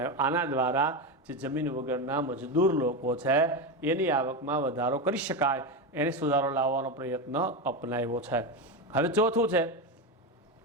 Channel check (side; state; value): both; normal; correlation 0.15